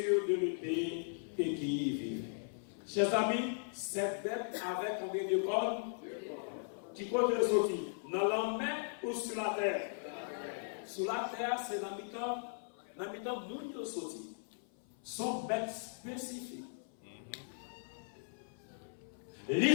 de l'épée et qui y vivait. Chers amis, cette bête avait combien de cornes? Qui compte les sortir? Dans la mer ou sur la terre? Sur la terre, c'est l'habitant moun sorti. Son bête spécifique.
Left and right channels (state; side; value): silent; right; 53 dB below the other